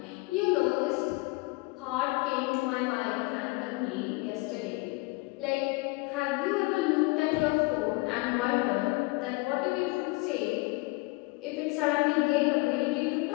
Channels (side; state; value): right; quieter; 25.4 dB